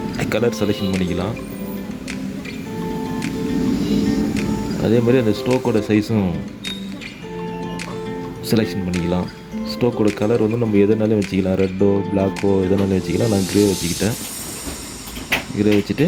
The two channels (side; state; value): both; identical; correlation 1.00